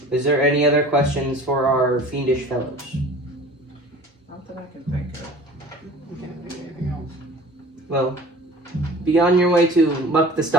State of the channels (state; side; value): normal; both; correlation 0.43